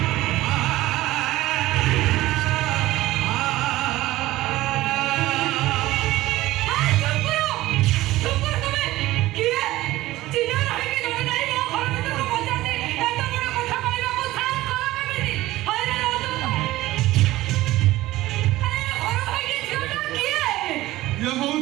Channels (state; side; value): quieter; left; 16.9 dB